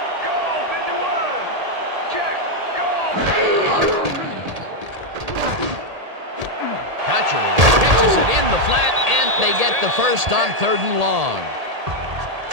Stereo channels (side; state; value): left; late; 1.8 ms